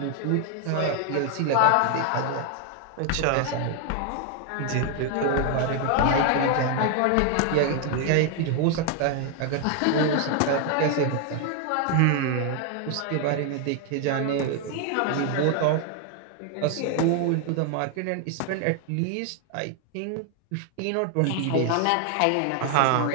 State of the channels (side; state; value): both; different; correlation 0.00